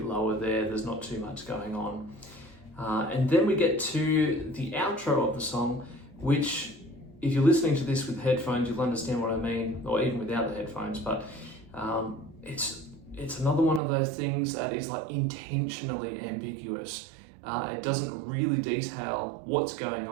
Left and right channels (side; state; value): left; drops out; at 13.8 s